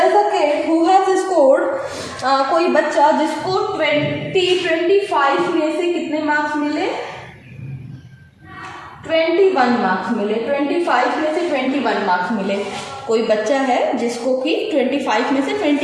is a kid who has scored, कोई बच्चा जिसको 25 में से कितने मार्क्स मिले, 21 मार्क्स मिले. 25 में से 21 मार्क्स मिले. कोई बच्चा है जिसको कि 25 में से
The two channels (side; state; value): both; identical; correlation 1.00